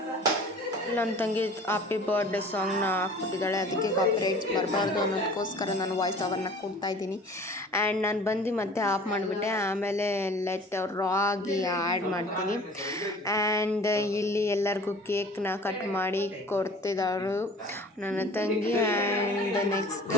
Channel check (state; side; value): normal; both; correlation 0.45